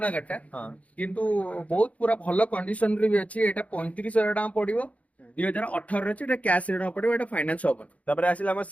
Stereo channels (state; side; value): late; right; 0.067 ms